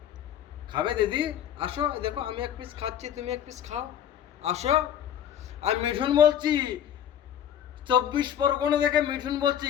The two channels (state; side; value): quieter; right; 10.0 dB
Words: খাবে দিদি? আসো, দেখো আমি এক পিস খাচ্ছি, তুমি এক পিস খাও, আসো। আমি মিঠুন বলছি, 24 পরগনা থেকে মিঠুন বলছি,